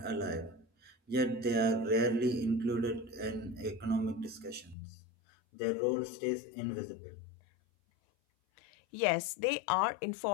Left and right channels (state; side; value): drops out; right; at 4.8 s